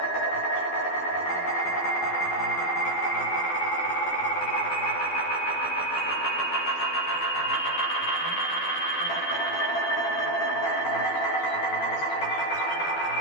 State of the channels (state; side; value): late; right; 12 ms